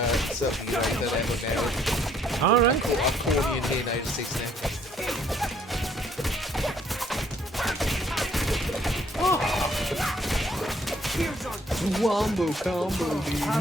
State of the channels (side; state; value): both; normal; correlation 0.64